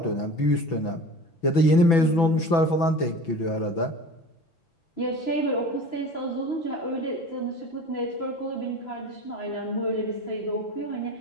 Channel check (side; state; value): right; late; 6.0 ms